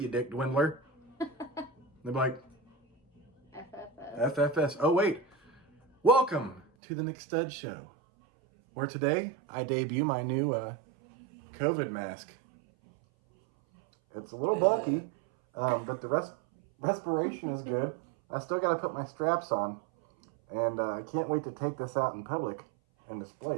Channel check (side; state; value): left; drops out; at 6.7 s